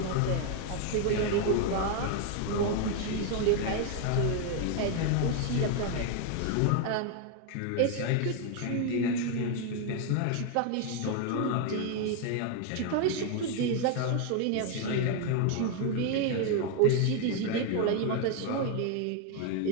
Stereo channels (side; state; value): both; different; correlation 0.01